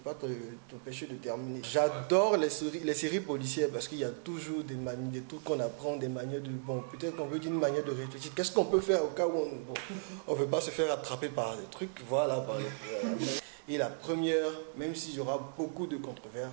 pas t'empêcher de terminer. J'adore les séries policières parce qu'il y a toujours des manies, des trucs qu'on apprend, des manières de... Bon, peut-être qu'on veut dire une manière de réfléchir. Qu'est-ce qu'on peut faire au cas où on ne veut pas se faire attraper par des trucs, voilà, par les... Et la première, même s'il y aura beaucoup de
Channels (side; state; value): left; silent; digital silence